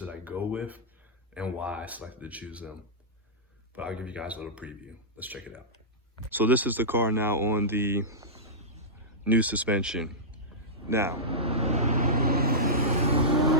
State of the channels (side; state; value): both; normal; correlation -0.13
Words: I go with, and why I selected to choose them. But I'll give you guys a little preview. Let's check it out. So this is the car now on the new suspension. Now,